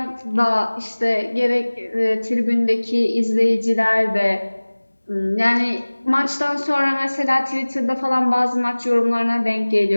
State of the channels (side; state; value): both; inverted; correlation -1.00